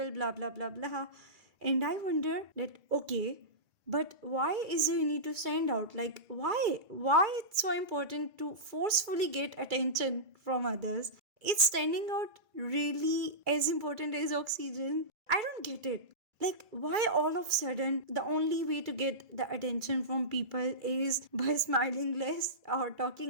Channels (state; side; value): late; left; 2.3 ms